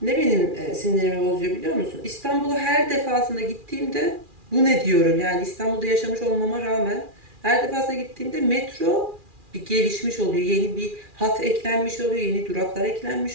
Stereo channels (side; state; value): left; late; 2.4 ms